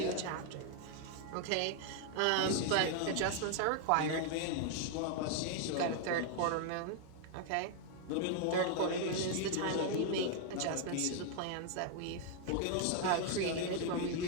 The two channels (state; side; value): different; both; correlation 0.00